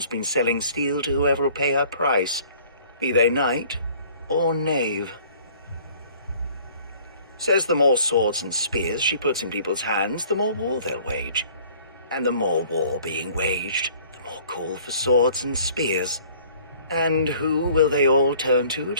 been selling steel to whoever will pay her price, be they knight or knave. Says the more swords and spears she puts in people's hands, the more war they'll wage. And the more war being waged, the more call for swords and spears. And who will they all turn to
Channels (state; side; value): inverted; both; correlation -0.54